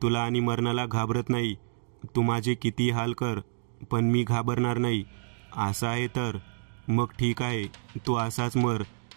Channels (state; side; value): silent; left; digital silence